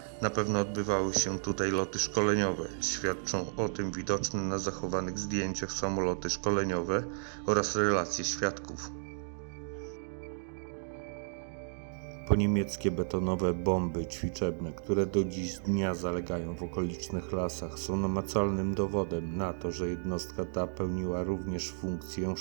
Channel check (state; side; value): silent; left; digital silence